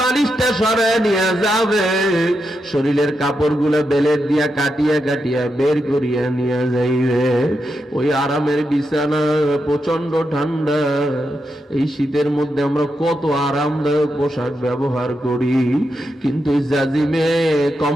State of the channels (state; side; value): normal; both; correlation 0.85